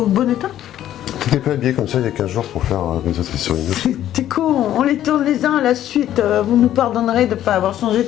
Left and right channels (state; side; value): quieter; right; 12.0 dB